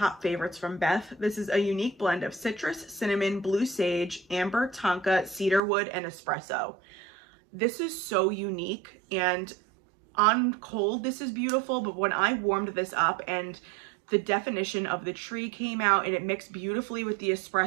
favorites from Beth. This is a unique blend of citrus, cinnamon, blue sage, amber, tonka, cedar wood, and espresso. This is so unique, and on cold this is beautiful, but when I warmed this up and the definition of the tree came out and it mixed beautifully with the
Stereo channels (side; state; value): left; drops out; at 5.6 s